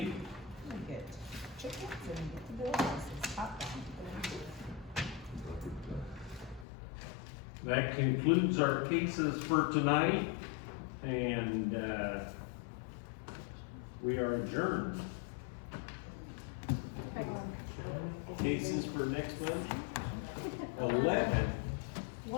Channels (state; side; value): drops out; right; at 6.7 s